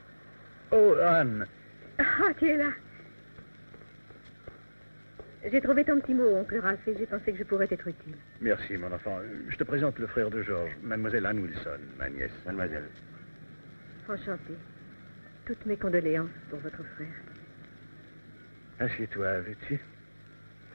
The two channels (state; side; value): inverted; both; correlation -1.00